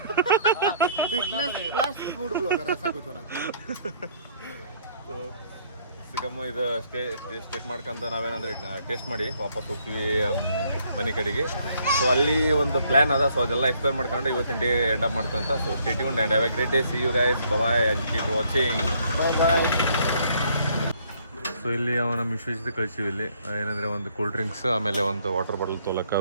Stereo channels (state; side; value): inverted; both; correlation -0.65